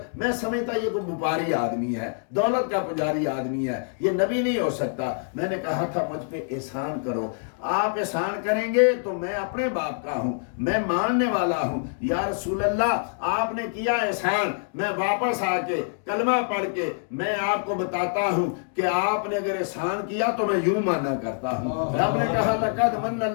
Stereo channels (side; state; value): right; silent; digital silence